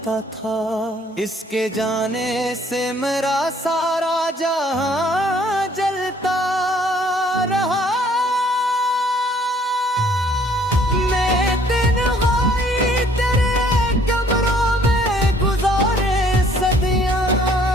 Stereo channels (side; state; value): both; normal; correlation 0.60